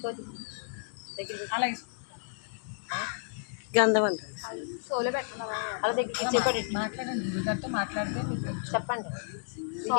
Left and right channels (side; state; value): right; silent; digital silence